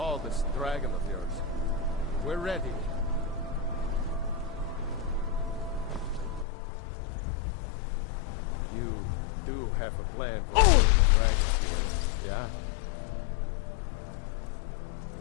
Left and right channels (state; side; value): drops out; right; at 6.5 s